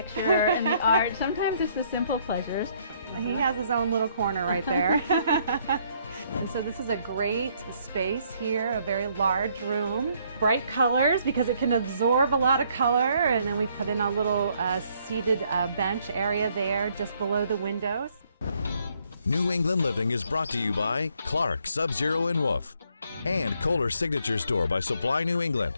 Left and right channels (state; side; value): inverted; both; correlation -0.68